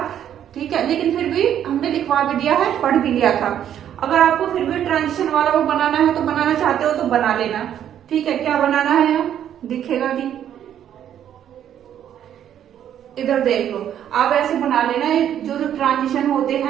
ठीक है, लेकिन फिर भी हमने लिखवा भी दिया है, पढ़ भी लिया था। अगर आपको फिर भी ट्रांजिशन वाला वो बनाना है, तो बनाना चाहते हो तो बना लेना, ठीक है। क्या बनाना है, दिखेगा नहीं, इधर देख लो, आप ऐसे बना लेना, जो ट्रांजिशन होते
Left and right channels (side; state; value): left; quieter; 10.1 dB